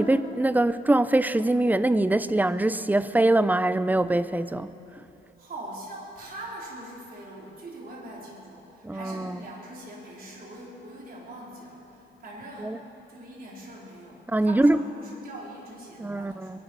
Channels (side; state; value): both; normal; correlation 0.92